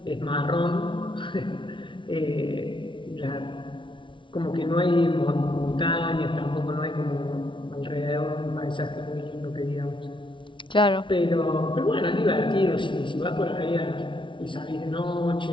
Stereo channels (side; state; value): right; late; 0.24 ms